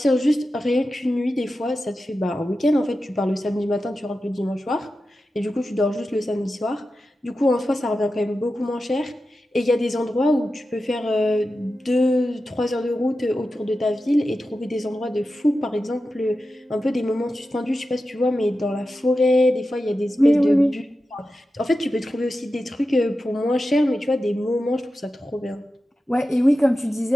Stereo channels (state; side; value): normal; both; correlation 0.92